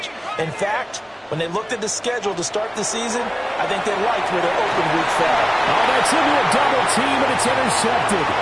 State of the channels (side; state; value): both; identical; correlation 1.00